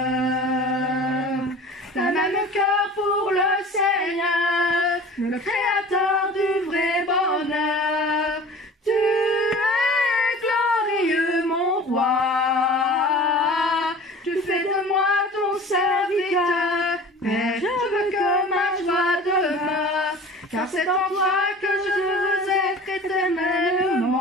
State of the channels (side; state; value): both; normal; correlation 0.41